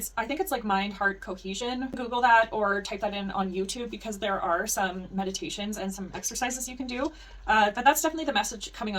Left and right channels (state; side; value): identical; both; correlation 1.00